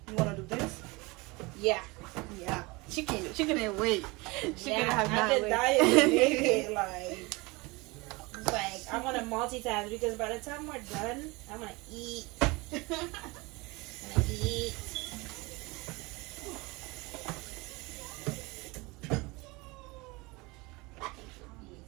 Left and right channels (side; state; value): left; quieter; 24.6 dB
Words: wanna do this? Yeah. Yeah. She couldn't wait. She Yeah, couldn't have I've not been wait. dying to make it. It's like I want to multitask because by the time we're done, I'm gonna eat. I'm gonna eat.